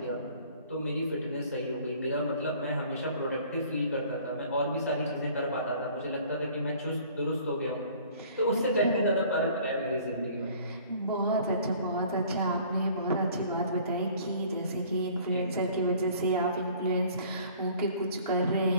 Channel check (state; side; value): inverted; both; correlation -0.52